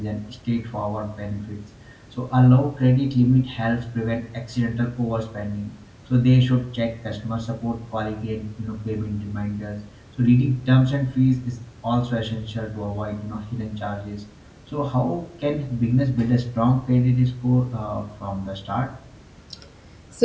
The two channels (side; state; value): both; identical; correlation 1.00